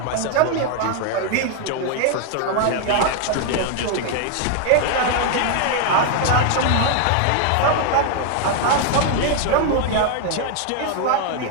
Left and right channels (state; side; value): different; both; correlation 0.00